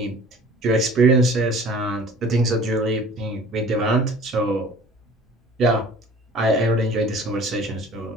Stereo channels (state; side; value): normal; both; correlation 0.47